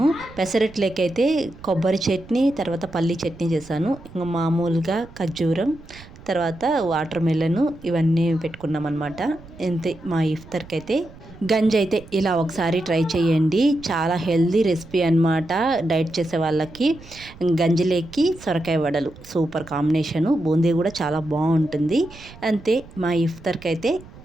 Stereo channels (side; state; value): right; noise; rumble, 19 dB below the sound